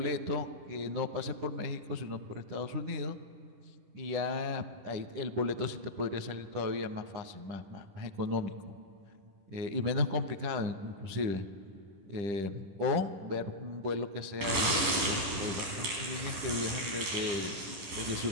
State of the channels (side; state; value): left; late; 10 ms